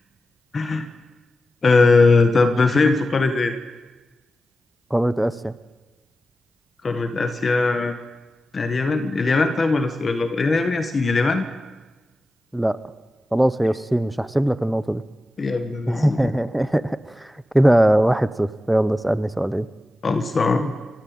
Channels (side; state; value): both; normal; correlation 0.93